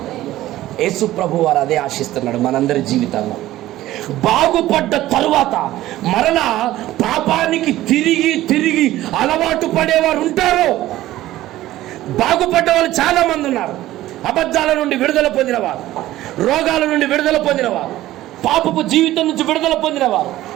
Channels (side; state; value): left; quieter; 15.2 dB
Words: యేసు ప్రభు వారు అదే ఆశిస్తున్నాడు మనందరి జీవితంలో. బాగుపడ్డ తరువాత మరలా పాపానికి తిరిగి తిరిగి అలవాటు పడేవారు ఉంటారు. బాగుపడ్డ వాళ్ళు చాలా మంది ఉన్నారు. అబద్ధాల నుండి విడుదల పొందినవారు, రోగాల నుండి విడుదల పొందినవారు, పాపపు జీవితం నుంచి విడుదల పొందినవారు,